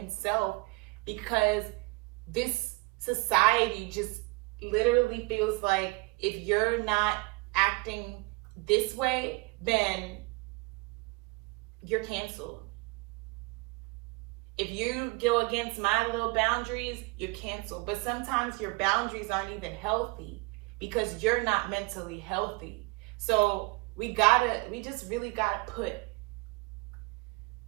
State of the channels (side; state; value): left; quieter; 26.1 dB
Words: because this society just literally feels like if you're not acting this way, then you're canceled. If you go against my little boundaries, you're canceled. But sometimes your boundaries aren't even healthy because you're not mentally healthy. So we just really gotta put